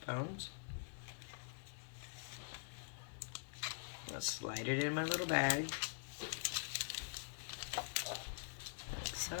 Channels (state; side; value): silent; right; digital silence